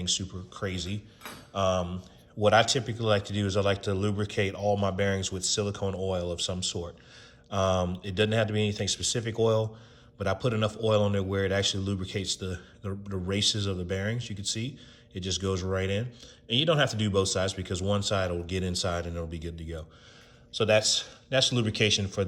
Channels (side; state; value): both; identical; correlation 1.00